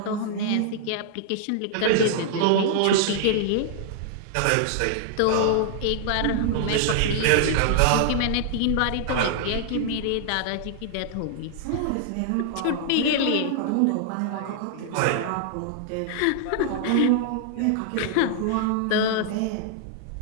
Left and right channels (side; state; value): both; different; correlation -0.01